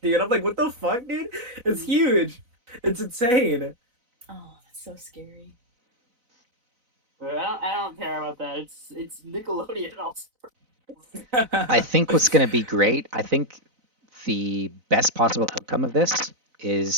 dude. I'm like, what the fuck, dude? It's huge. It's insane. Oh, that's so scary. But I don't care about that. It's Nickelodeon also. I think what's going to be great, I think the best possible outcome of this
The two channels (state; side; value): late; left; 4.0 ms